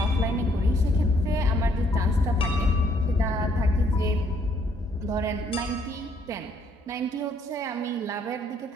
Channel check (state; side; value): normal; both; correlation 0.67